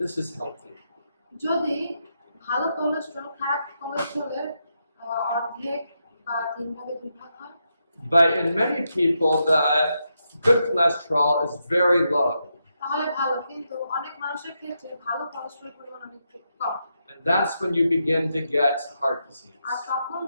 this is healthy. যদি ভালো কোলেস্টেরল খারাপ কোলেস্টেরলের অর্ধেক বা 3 ভাগে 2 ভাগ হয়, But in many people, the good cholesterol is very low. তাহলে ভালো। কিন্তু অনেক মানুষের ক্ষেত্রে ভালো কোলেস্টেরল পরিমাণ অনেক কম। And that's when you begin to get heart disease. আর তখন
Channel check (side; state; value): both; inverted; correlation -0.83